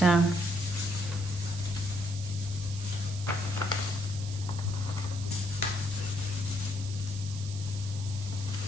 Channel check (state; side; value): noise; right; hiss, 12 dB below the sound